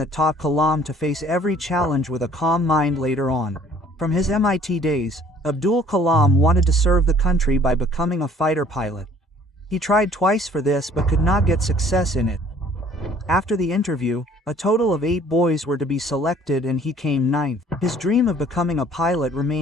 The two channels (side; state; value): both; normal; correlation 0.56